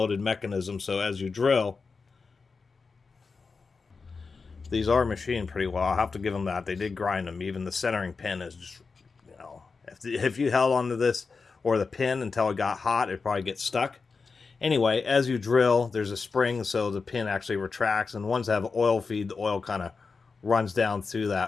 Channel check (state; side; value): quieter; right; 4.7 dB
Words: mechanism, so as you drill, these are machined pretty well. I'll have to give them that. They did grind them. Even the centering pin is just, you know, if you held onto this or the pin until it got hot, it'd probably get stuck. Anyway, as you drill, there's a spring, so the pin actually retracts. And ones that have oil feed, the oil kind of runs down through